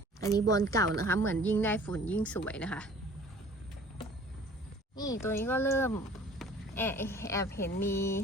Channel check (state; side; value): normal; both; correlation 0.49